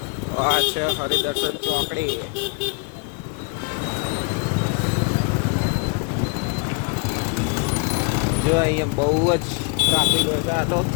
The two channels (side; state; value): right; quieter; 34.4 dB